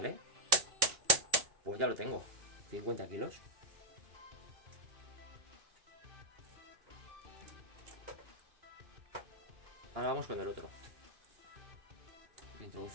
Pues ya lo tengo. 50 kilos. Ahora vamos con el otro.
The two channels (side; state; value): left; late; 2.5 ms